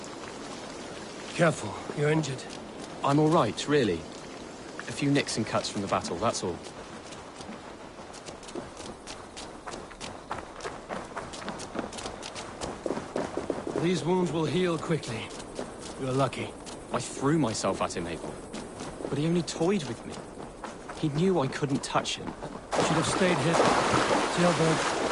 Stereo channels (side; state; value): both; identical; correlation 1.00